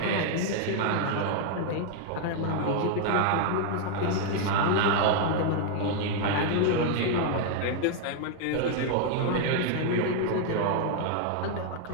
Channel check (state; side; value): different; both; correlation 0.00